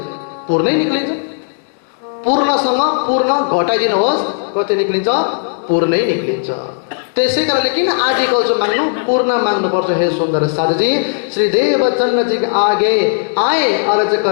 पूर्णै निक्लिन्छ। पूर्णसँग पूर्ण घटाइदिनुहोस्, कति निक्लिन्छ? पूर्णै निक्लिन्छ। त्यसै कारणले किन आदिकल्प जो माग्नु? पूर्ण माग्नुपर्छ। हे सुंदर साधुजी, श्री देवचंद्र जी आगे आए अर्ज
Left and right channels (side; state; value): right; silent; digital silence